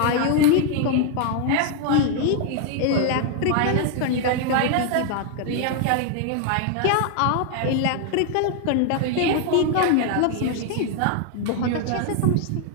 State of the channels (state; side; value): different; both; correlation 0.00